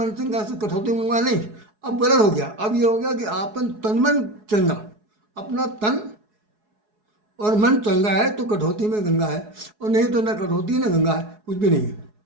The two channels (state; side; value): late; left; 4.7 ms